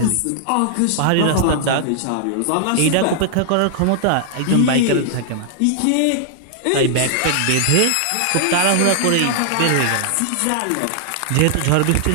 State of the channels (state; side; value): different; both; correlation -0.01